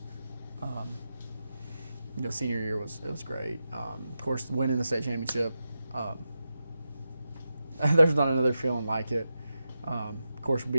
You know, senior year was great. Of course, winning the state championship. There's not another feeling like it. Of course,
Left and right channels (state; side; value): inverted; both; correlation -0.90